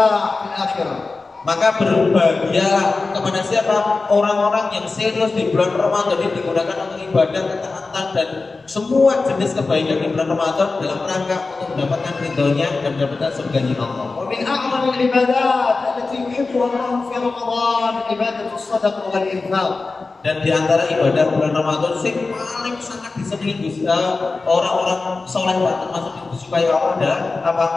في الآخرة. Maka berbahagialah kepada siapa? Orang-orang yang serius di bulan Ramadan ini digunakan untuk ibadah, ketaatan dan semua jenis kebaikan di bulan Ramadan dalam rangka untuk mendapatkan ridhonya dan mendapatkan surganya Allah. ومن أعظم العبادات التي يحبها الله في رمضان عبادة الصدقة والإنفاق. Dan di antara ibadah bulan Ramadan yang paling sangat disenangi orang-orang soleh termasuk yang disukai Allah adalah apa?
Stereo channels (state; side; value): quieter; right; 3.8 dB